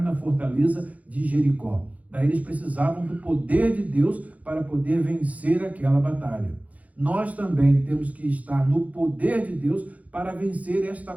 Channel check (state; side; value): late; left; 0.070 ms